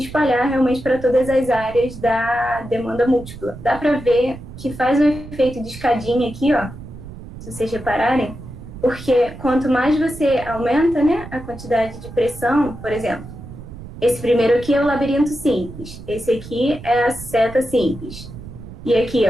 realmente para todas as áreas da demanda múltipla. Dá para ver que faz um efeito de escadinha aqui, ó, se vocês repararem, porque quanto mais você aumenta, né, a quantidade de pressão, por exemplo, esse primeiro aqui é o labirinto simples, esse aqui é a seta simples, e aqui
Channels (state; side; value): noise; right; rumble, 14 dB below the sound